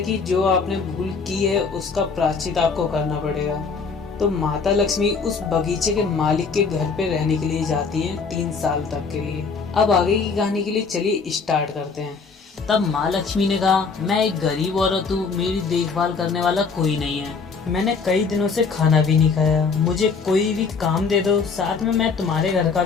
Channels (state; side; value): quieter; right; 5.0 dB